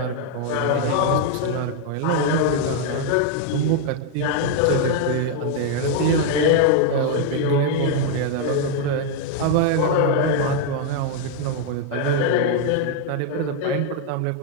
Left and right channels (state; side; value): different; both; correlation 0.00